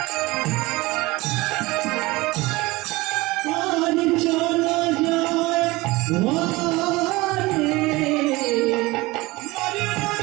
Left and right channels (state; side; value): quieter; left; 21.5 dB